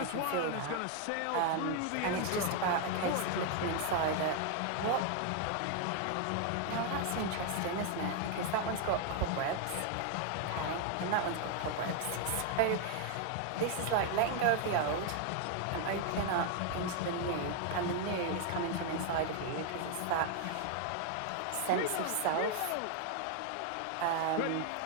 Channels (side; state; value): both; different; correlation 0.00